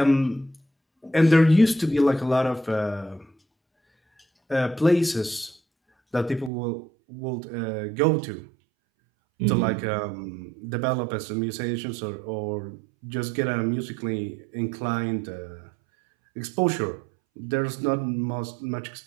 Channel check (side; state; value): left; drops out; at 6.5 s